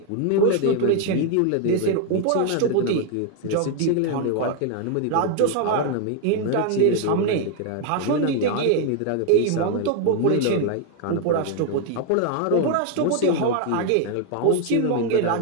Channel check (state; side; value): different; both; correlation 0.00